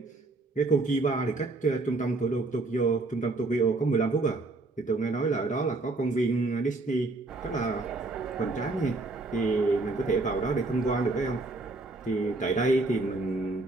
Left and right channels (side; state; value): left; quieter; 3.2 dB